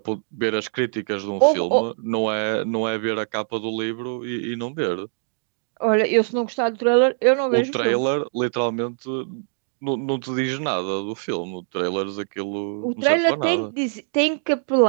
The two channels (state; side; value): silent; left; digital silence